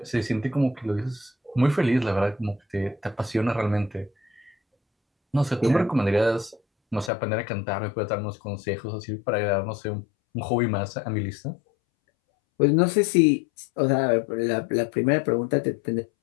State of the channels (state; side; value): drops out; right; at 7.1 s